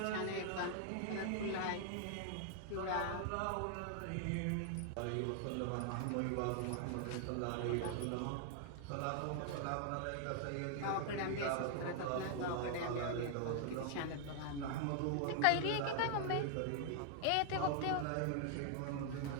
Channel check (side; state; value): both; different; correlation 0.00